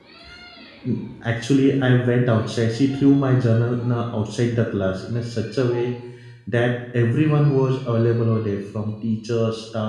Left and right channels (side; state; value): both; identical; correlation 1.00